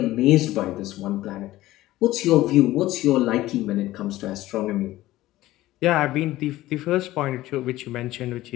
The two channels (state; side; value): quieter; right; 16.3 dB